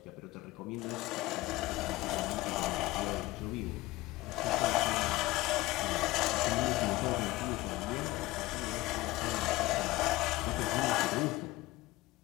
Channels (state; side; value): quieter; right; 19.1 dB